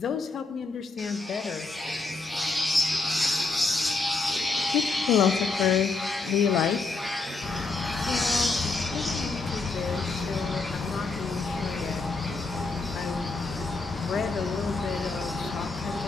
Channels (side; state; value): right; quieter; 3.7 dB